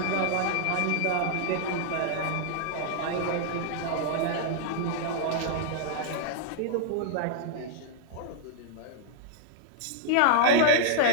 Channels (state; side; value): different; both; correlation -0.01